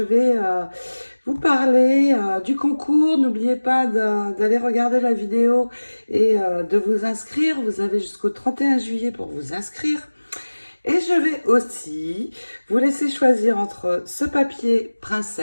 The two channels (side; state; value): both; inverted; correlation -1.00